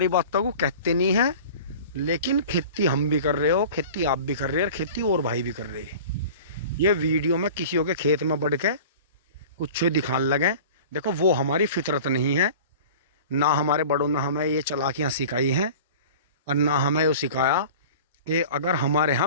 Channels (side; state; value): both; inverted; correlation -0.40